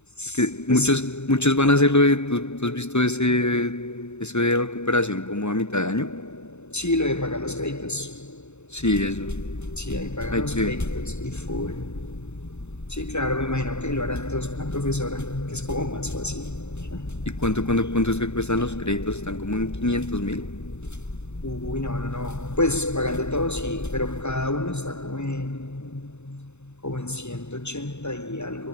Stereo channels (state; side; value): late; right; 0.82 ms